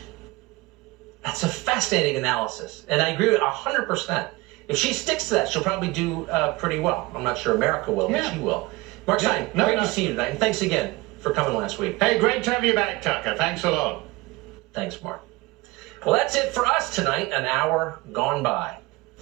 That's a fascinating analysis, and I agree with 100%. If she sticks to that, she'll probably do pretty well. I'm not sure America will, but she will. Mark Stein, great to see you tonight, and thanks again for coming last week. Hey, great to have you back, Tucker. Thanks a lot. Thanks, Mark. Well, that's it for us tonight, an hour gone by.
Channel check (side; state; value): left; quieter; 22.5 dB